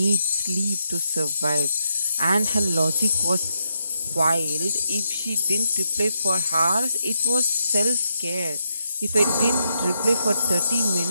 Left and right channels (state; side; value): inverted; both; correlation -0.82